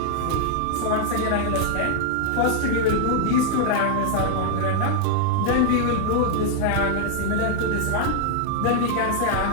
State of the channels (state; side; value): different; both; correlation 0.00